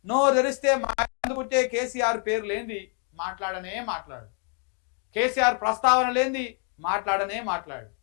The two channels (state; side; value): quieter; right; 39.4 dB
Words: నోరు తెరిస్తే పుట్టే కేసీఆర్ పేరు లేనిది మాట్లాడు. కేసీఆర్ ప్రస్తావన లేనిది మాట్లాడు.